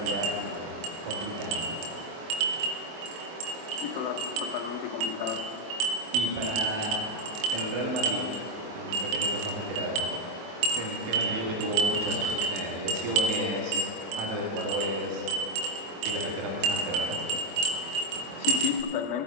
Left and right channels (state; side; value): late; left; 24 ms